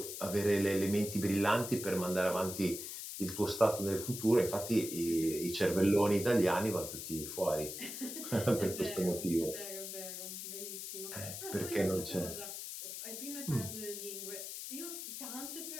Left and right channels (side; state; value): left; noise; hiss, 7 dB below the sound